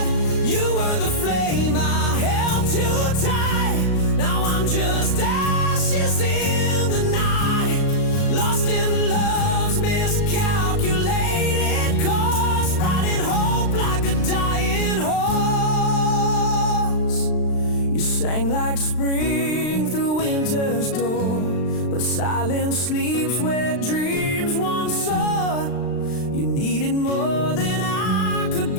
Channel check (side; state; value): right; late; 36 ms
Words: You were the flame I held too tight, now I'm just ashes in the night, lost in love's miscalculated course, riding hope like a dying horse. You sang like spring through winter's door, but silence sleeps where dreams once soared. You needed more than I could